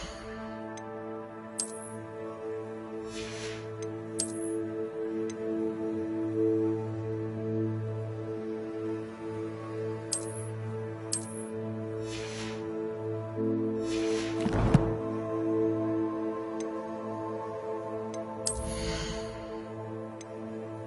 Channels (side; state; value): both; identical; correlation 1.00